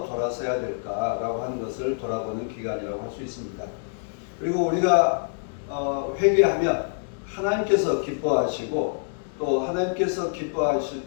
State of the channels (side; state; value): right; silent; digital silence